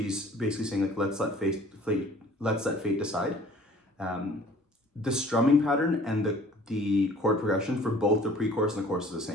basically saying like, let's let fate decide. The strumming pattern and the chord progression for both the pre-chorus and the chorus is the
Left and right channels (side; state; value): both; normal; correlation 0.51